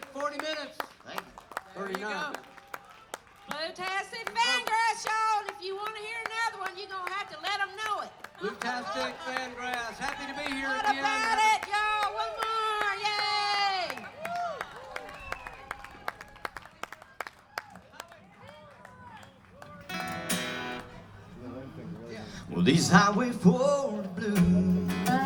40 minutes. Thank you. 39. Bluetastic Fangrass, y'all. And if you want to hear another one, you're going to have to let them know it. Bluetastic Fangrass. Happy to be here What again. about it, y'all? One more. Yay! Well, these Highway 4 blues.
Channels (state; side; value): identical; both; correlation 1.00